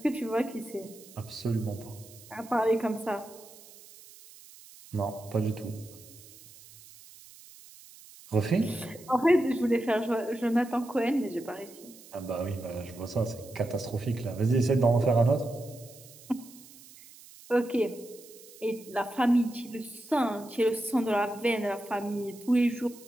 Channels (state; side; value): noise; right; hiss, 21 dB below the sound